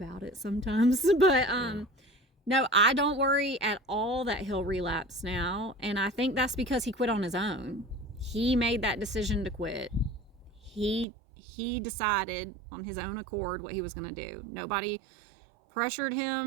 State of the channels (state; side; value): drops out; left; at 11.1 s